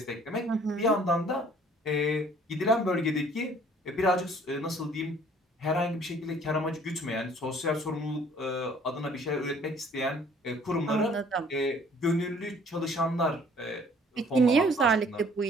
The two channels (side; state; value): both; normal; correlation 0.56